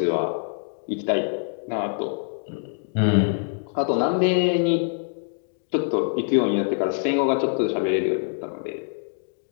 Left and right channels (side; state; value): right; silent; digital silence